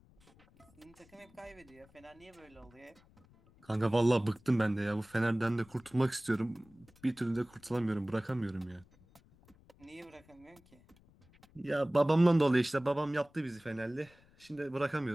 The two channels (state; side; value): noise; left; rumble, 28 dB below the sound